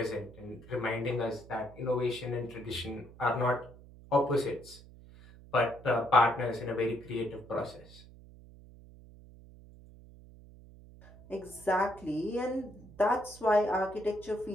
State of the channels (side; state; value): right; noise; hum, 20 dB below the sound